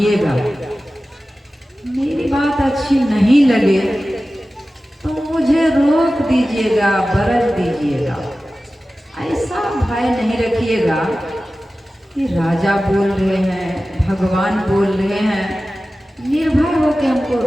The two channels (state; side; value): normal; both; correlation 0.95